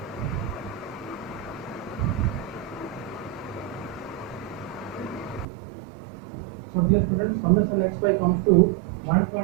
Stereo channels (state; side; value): drops out; left; at 5.5 s